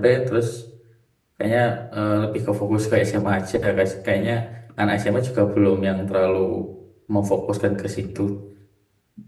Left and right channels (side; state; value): both; identical; correlation 1.00